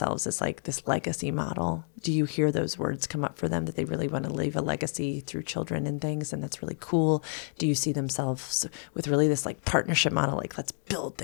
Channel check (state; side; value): silent; right; 58 dB below the other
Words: as like this legacy model? Do you hear those words come up for them, that they really want to leave a legacy through children and things? And that's really cool. Do you see themselves with really this like partnership model? Like, let's build